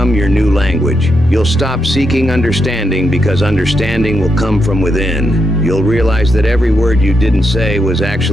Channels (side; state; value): both; normal; correlation 0.82